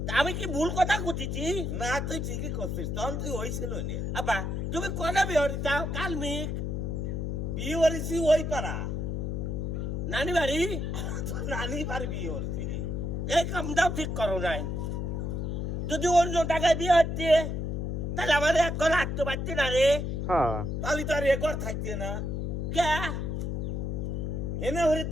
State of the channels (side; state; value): left; noise; hum, 2 dB below the sound